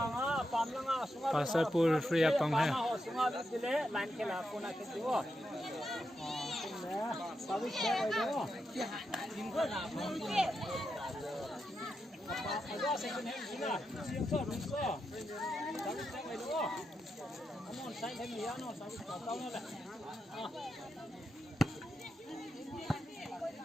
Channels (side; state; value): both; normal; correlation 0.86